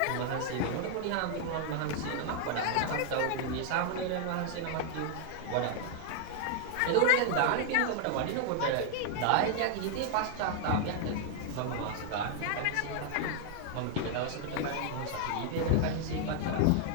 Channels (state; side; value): different; both; correlation 0.00